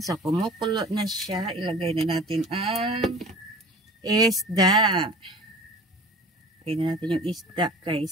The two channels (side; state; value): both; normal; correlation 0.41